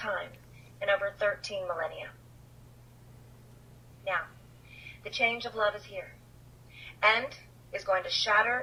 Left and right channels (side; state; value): both; identical; correlation 1.00